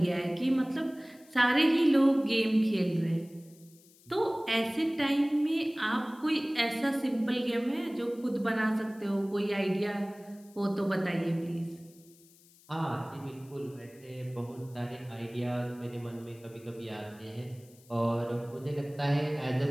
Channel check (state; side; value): noise; left; hiss, 27 dB below the sound